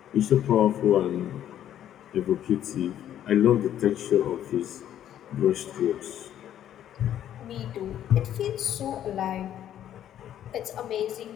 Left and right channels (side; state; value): right; quieter; 10.9 dB